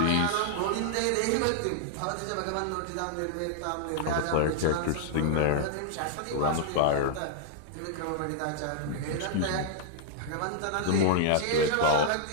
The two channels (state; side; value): different; both; correlation -0.01